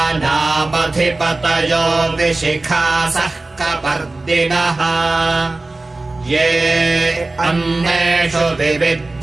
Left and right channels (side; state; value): left; quieter; 3.1 dB